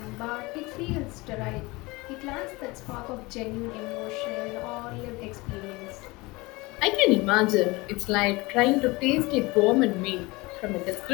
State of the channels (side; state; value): right; quieter; 23.2 dB